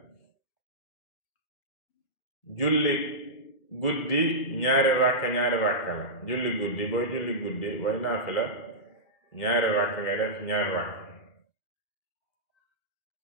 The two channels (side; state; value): right; late; 2.4 ms